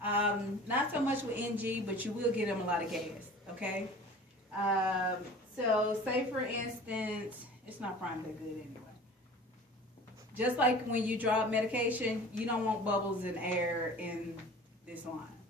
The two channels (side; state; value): both; normal; correlation 0.42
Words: Not so much with NG, but you will get them a lot of gas, okay? So say for instance, it's not primed that good anyway. Just like when you drop medication, you don't want bubbles and air in this line.